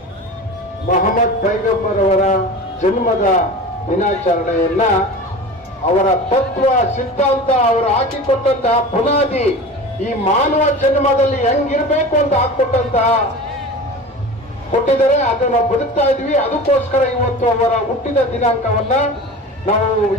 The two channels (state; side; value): normal; both; correlation 0.34